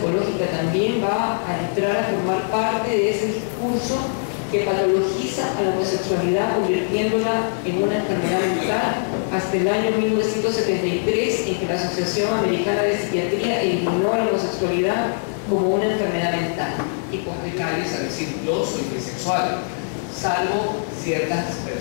también va a entrar a formar parte de ese discurso que patologiza a la homosexualidad, convirtiéndola en una enfermedad mental, hasta el año 1973, en que la Asociación Americana de Psiquiatría eliminó la homosexualidad como una enfermedad mental. Y pues hay calles a decir yo soy bisexual, salvo ciertas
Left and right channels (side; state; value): right; silent; digital silence